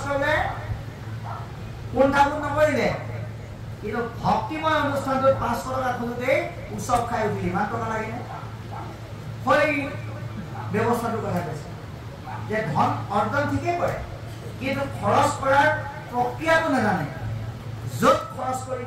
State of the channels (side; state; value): both; identical; correlation 1.00